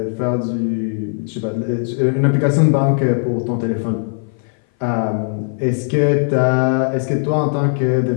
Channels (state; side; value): silent; right; 59 dB below the other